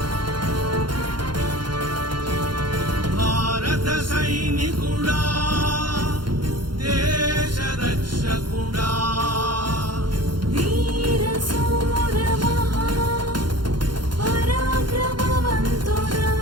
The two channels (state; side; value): late; left; 0.71 ms